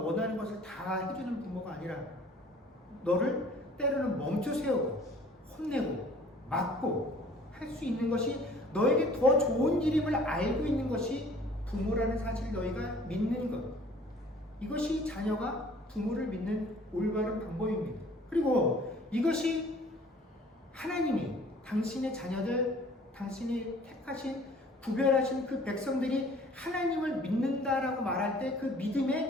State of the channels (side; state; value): both; normal; correlation 0.52